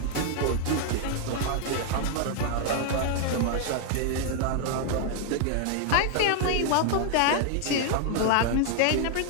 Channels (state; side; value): different; both; correlation 0.00